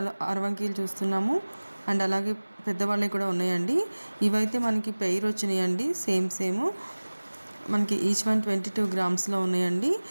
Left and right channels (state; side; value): inverted; both; correlation -1.00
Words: అరవంకీలు చూస్తున్నాము అండ్ అలాగే పెద్దవాళ్ళవి కూడా ఉన్నాయండి. ఇవైతే మనకి పెయిర్ వచ్చినాయండి, సేమ్ మనకి ఈచ్ వన్ 22 గ్రామ్స్లో ఉన్నాయండి.